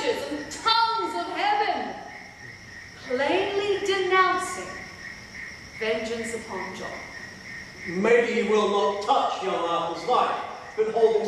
and tongues of heaven, plainly denouncing vengeance upon John. Maybe he will not touch young Arthur's life, but hold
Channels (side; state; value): both; identical; correlation 1.00